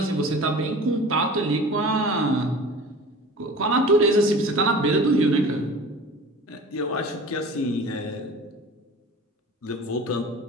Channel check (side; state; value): both; normal; correlation 0.39